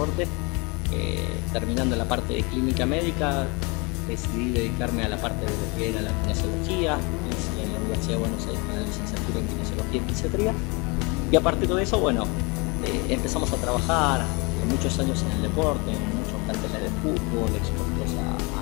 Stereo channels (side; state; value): right; quieter; 29.0 dB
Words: Terminando la parte de clínica médica, decidí dedicarme a la parte de lo que era la kinesiología. Hice en la Universidad de Buenos Aires la licenciatura en kinesiología y fisiatría. Y a partir de eso, bueno, empezamos a trabajar muchos años en el deporte, en muchos planteles de fútbol, expuestos a